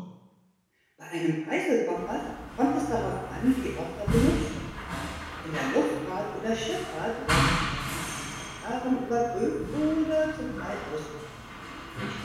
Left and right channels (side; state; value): both; identical; correlation 1.00